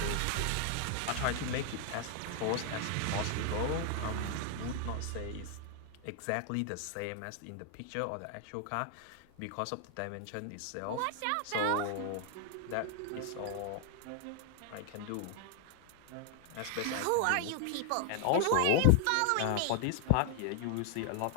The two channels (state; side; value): different; both; correlation 0.00